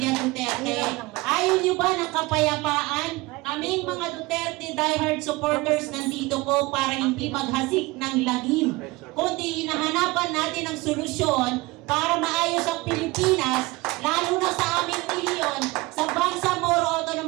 Duterte? Ayaw nyo ba ng kapayapaan? Aming mga Duterte diehard supporters nandito po para hindi maghasik ng lagim, kundi hinahanapan natin ang solusyon para maayos ang Pilipinas, lalo na sa aming rehiyon, sa Bangsamoro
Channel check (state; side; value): quieter; left; 21.8 dB